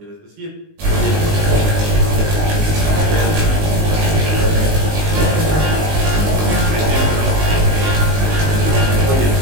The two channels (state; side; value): late; left; 19 ms